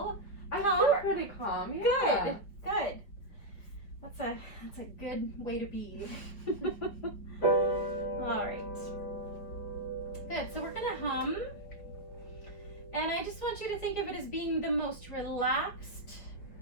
I calm? feel pretty calm. Yeah. Good. That's a good way to be. All right. Good. So we're gonna hum, and I just want you to think of it as being the most relaxed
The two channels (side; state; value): right; late; 4.9 ms